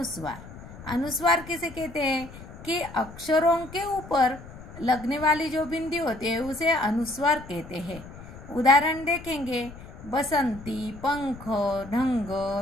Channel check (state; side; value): noise; left; rumble, 16 dB below the sound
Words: अनुस्वार किसे कहते हैं कि अक्षरों के ऊपर लगने वाली जो बिंदी होती है उसे अनुस्वार कहते हैं। उदाहरण देखेंगे, बसंती, पंख, ढंग,